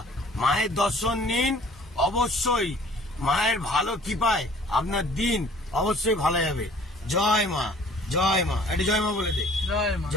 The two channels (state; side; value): normal; both; correlation 0.53